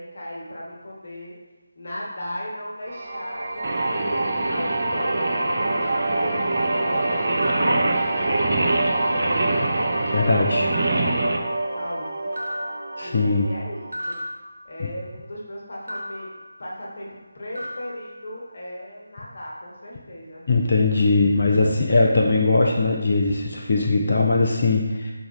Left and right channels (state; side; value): inverted; both; correlation -0.84